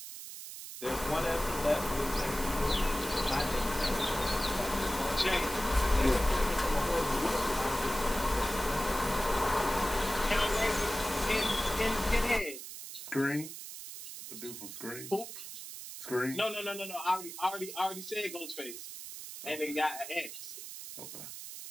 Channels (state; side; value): noise; right; hiss, 10 dB below the sound